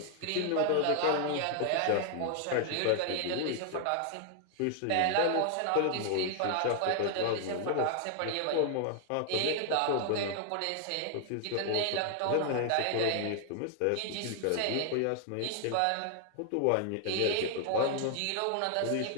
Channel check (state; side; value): different; both; correlation 0.00